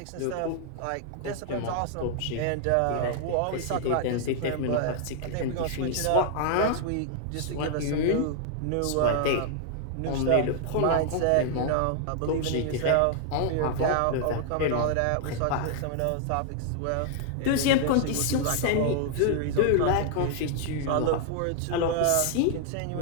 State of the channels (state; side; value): different; both; correlation 0.00